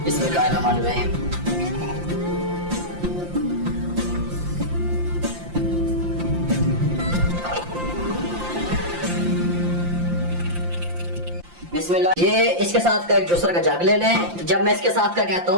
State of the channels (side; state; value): left; late; 5.7 ms